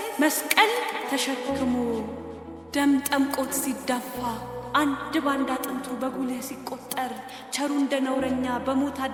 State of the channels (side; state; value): both; identical; correlation 1.00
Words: መስቀል ተሸክሞ ደም ጠምቆት ሲዳፋ አንድ ባንድ አጥንቱ በጉልህ ሲቆጠር ቸሩ እንደ ነውረኛ በሞት